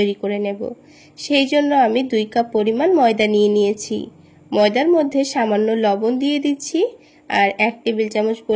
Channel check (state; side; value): identical; both; correlation 1.00